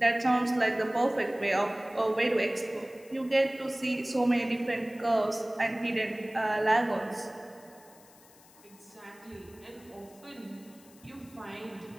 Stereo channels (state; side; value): noise; left; hiss, 25 dB below the sound